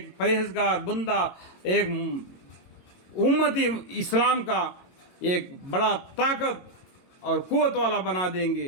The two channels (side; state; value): right; late; 22 ms